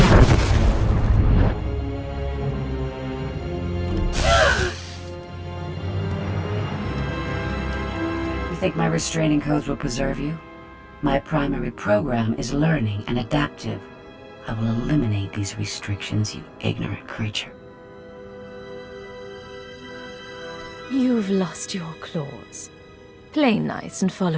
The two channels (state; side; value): identical; both; correlation 1.00